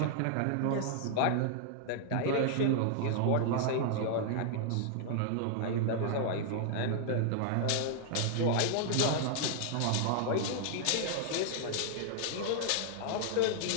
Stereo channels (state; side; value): different; both; correlation 0.00